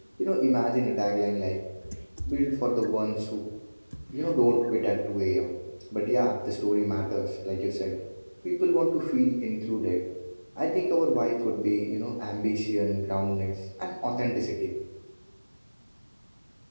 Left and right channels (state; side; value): inverted; both; correlation -1.00